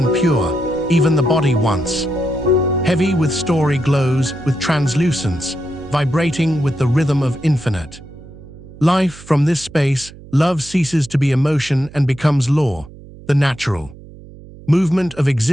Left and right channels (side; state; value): right; noise; hum, 19 dB below the sound